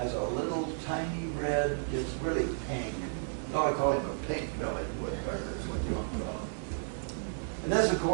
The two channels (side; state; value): left; silent; digital silence